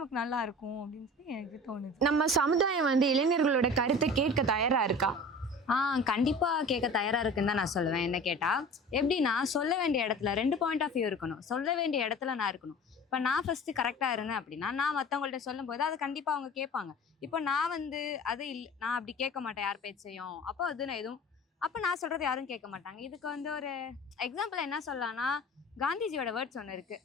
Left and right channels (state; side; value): normal; both; correlation 0.40